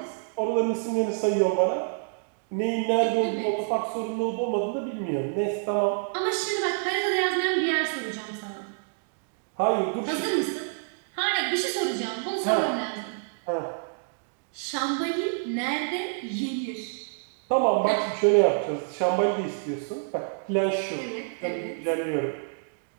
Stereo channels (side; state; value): left; silent; digital silence